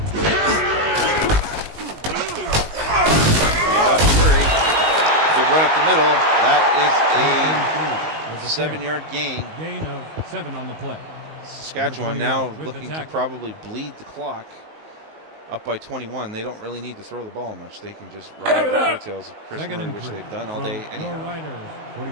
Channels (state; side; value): late; left; 19 ms